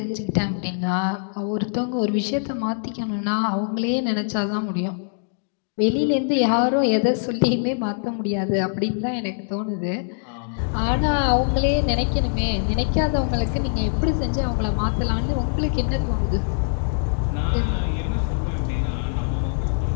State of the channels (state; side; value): silent; right; digital silence